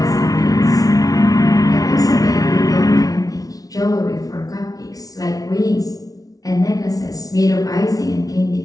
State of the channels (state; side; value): late; right; 0.18 ms